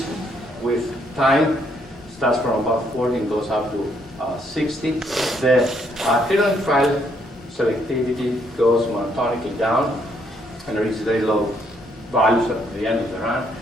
with time. Starts from about 40 and goes up to 60. The acrylonitrile selectivity goes monotonically down and reaches very low values at the end of the run.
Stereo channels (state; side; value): normal; both; correlation 0.71